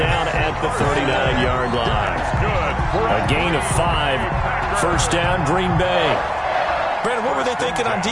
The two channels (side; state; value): both; identical; correlation 1.00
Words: at the 39-yard line. A gain of 5. 1st down, Green Bay. Brandon, what were they thinking on